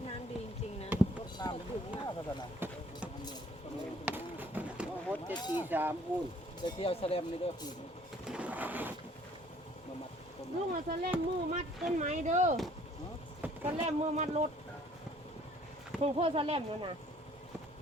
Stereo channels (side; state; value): both; normal; correlation 0.58